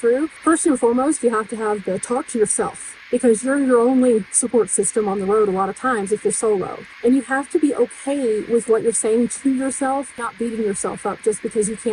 First and foremost, you have to have the talk to yourself, because you're your only support system on the road a lot of times if you're solo. And you have to be okay with what you're saying to yourself, not beating yourself up just because you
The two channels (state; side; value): identical; both; correlation 1.00